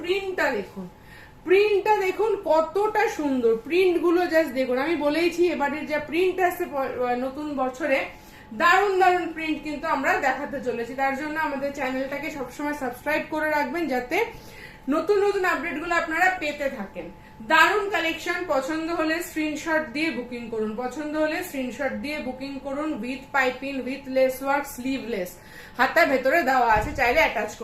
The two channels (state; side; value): identical; both; correlation 1.00